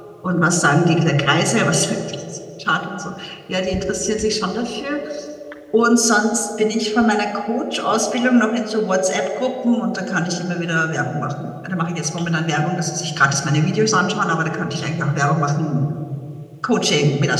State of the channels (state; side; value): identical; both; correlation 1.00